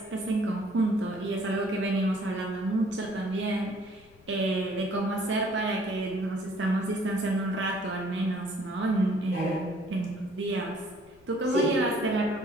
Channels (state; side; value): noise; left; rumble, 28 dB below the sound